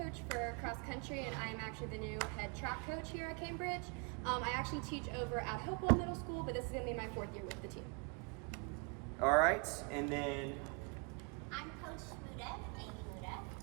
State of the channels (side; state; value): left; quieter; 34.1 dB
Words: for cross country, and I'm actually the new head track coach here at Cambridge. I actually teach over at Hopewell Middle School, but this is going to be my 4th year with the team. All right, and then I'm Coach Muda, Amy Muda,